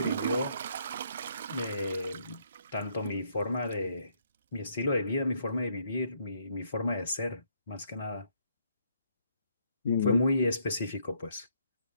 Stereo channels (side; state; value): both; inverted; correlation -0.71